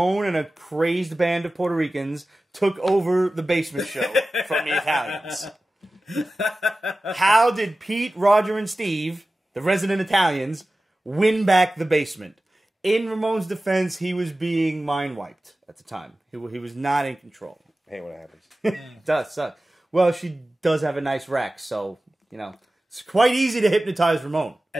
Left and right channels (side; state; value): both; normal; correlation 0.96